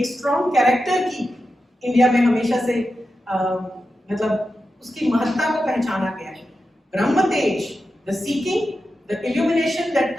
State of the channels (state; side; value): normal; both; correlation 0.90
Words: स्ट्रॉन्ग कैरेक्टर की इंडिया में हमेशा से मतलब उसकी महत्ता को पहचाना गया है। ब्रह्म तेज, the seeking, the illumination that